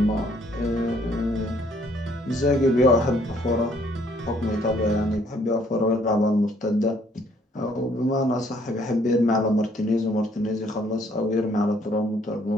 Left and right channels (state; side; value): normal; both; correlation 0.64